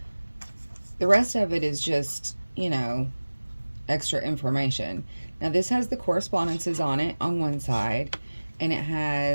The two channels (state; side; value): inverted; both; correlation -1.00